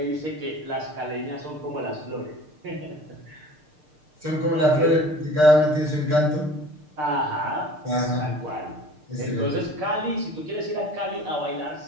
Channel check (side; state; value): left; late; 6.6 ms